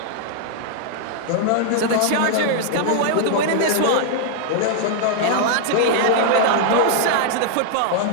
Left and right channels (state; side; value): different; both; correlation -0.01